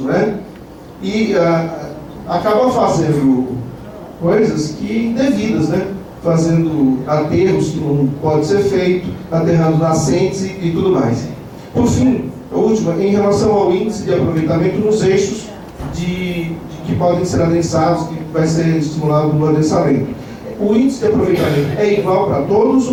né? E acaba fazendo coisas que indevidas, né? Fazendo aterros que não pode ser feito, aterrando nascentes e tudo mais. Por fim, a última, em relação ao índice de aproveitamento nos eixos que podem ser adensados, que vai ser estimulado no adensamento. O índice de aproveitamento é igual para todos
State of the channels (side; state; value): both; identical; correlation 1.00